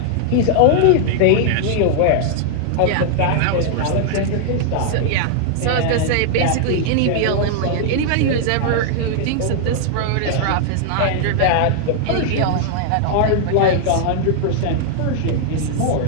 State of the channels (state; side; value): different; both; correlation -0.01